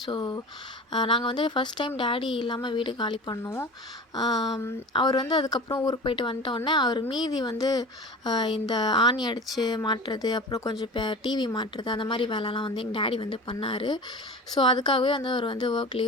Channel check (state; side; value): normal; both; correlation 0.35